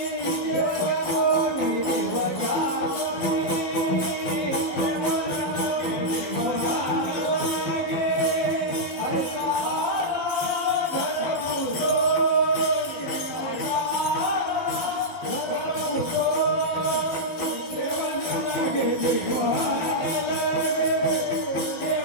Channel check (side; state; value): right; late; 12 ms